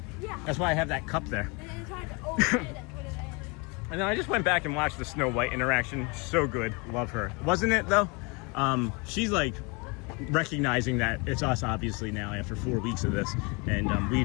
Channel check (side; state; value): right; quieter; 29.8 dB